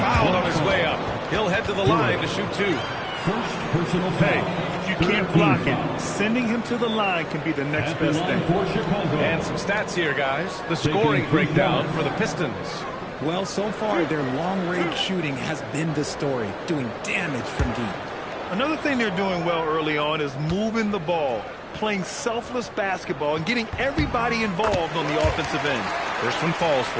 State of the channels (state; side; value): identical; both; correlation 1.00